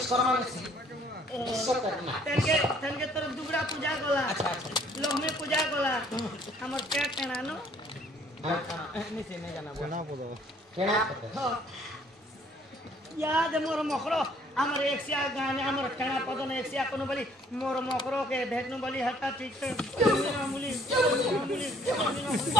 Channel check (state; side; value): normal; both; correlation 0.61